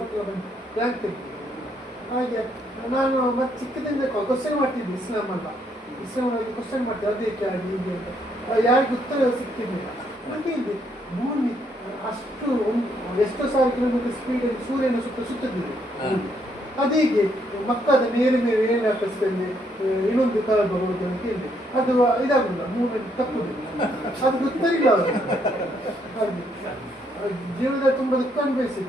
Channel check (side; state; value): both; normal; correlation 0.72